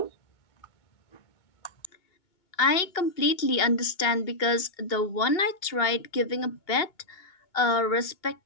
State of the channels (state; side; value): late; right; 2.2 ms